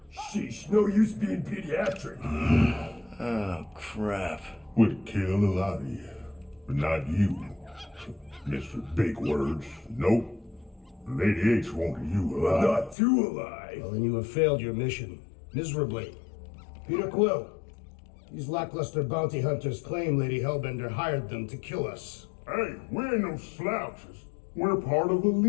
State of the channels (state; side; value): drops out; right; at 13.0 s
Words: Sheesh, no use being pediatric. Oh, crap. Would kill a lot of you, but not you, Mr. Big Words. Nope. Lady H wanted you alive. Not too alive. Well, then you have failed your mission. Miserably. Peter Quill. These lackluster bounty hunters claim Lady Hellbender hired them to kill us. Hey, we ain't no slouches. We're part of a